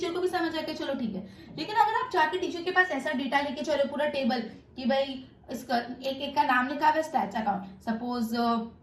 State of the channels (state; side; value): identical; both; correlation 1.00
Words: को भी समझ आया कि चलो ठीक है। लेकिन अगर आप जाके टीचर के पास ऐसा डेटा लेके चलो पूरा टेबल कि भाई इसका एक का नाम लिखा हुआ है stats account, suppose